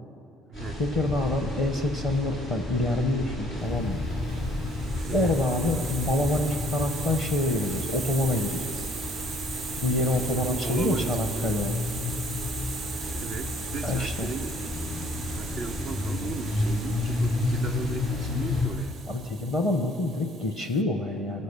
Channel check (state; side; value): normal; both; correlation 0.60